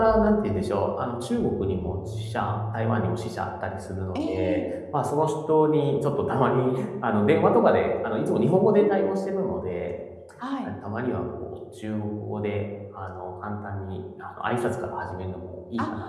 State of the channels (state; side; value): identical; both; correlation 1.00